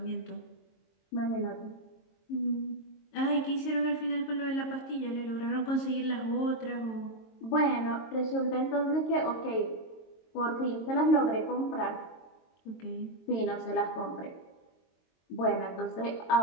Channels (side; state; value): right; late; 22 ms